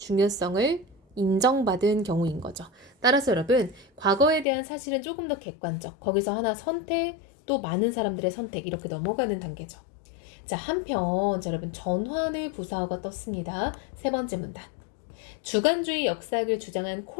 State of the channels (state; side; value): drops out; right; at 4.5 s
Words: 인정받은 경우인 거죠. 따라서 여러분 과거에 대한 사실은 조금 더 객관적, 거기서 하나 선택, 또 많은 사람들의 선택 이렇게 넘어가는 단계죠. 자, 한편 자, 여러분 전환의 부사어가 떴습니다. 세 번째 문단. 주관주의 역사학을 주장한